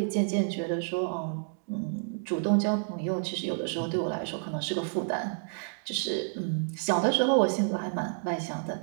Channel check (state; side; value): silent; left; digital silence